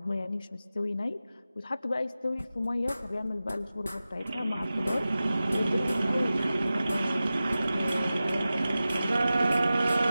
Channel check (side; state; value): both; inverted; correlation -0.95